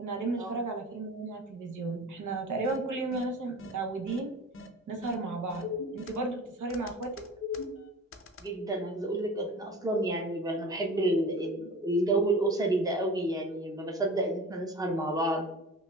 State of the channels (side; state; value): both; normal; correlation 0.38